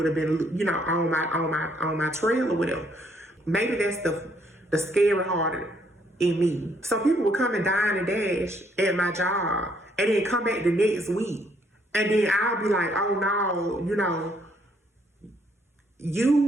have been, on my trail or whatever. Maybe that's the scary heart in me. So people would come and dine and dash at my job, and then come back the next week, and then I'll be like, oh no,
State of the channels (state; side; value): normal; both; correlation 0.69